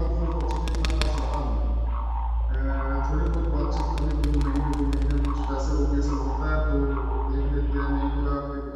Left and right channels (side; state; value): both; identical; correlation 1.00